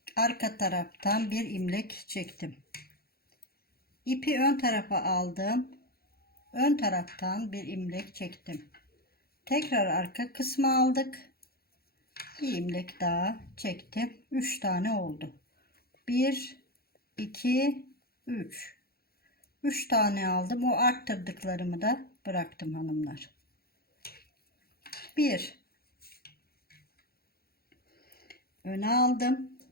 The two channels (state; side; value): late; right; 0.44 ms